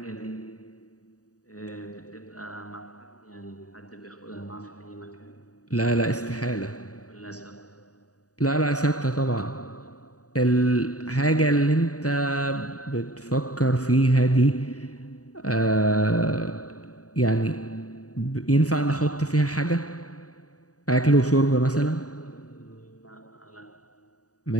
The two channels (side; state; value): right; late; 0.67 ms